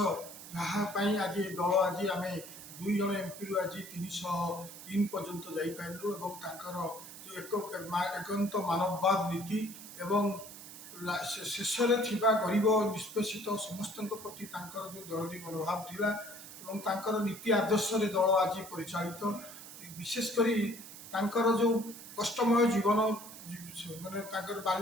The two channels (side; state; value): right; noise; hiss, 14 dB below the sound